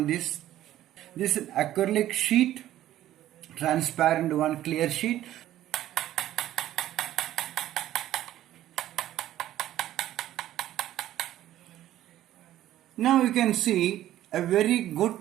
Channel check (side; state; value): left; quieter; 13.3 dB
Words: this acrylic sheet, transparent one, clear sheet. Now you can see a very good